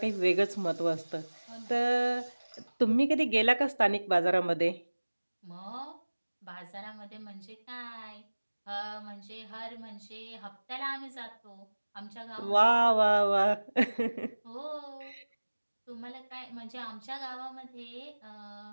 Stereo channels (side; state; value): both; inverted; correlation -1.00